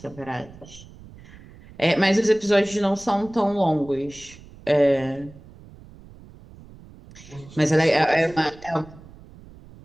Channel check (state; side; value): noise; right; rumble, 21 dB below the sound